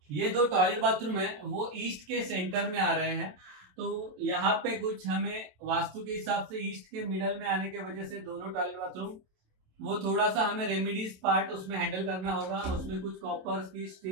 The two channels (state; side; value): late; left; 27 ms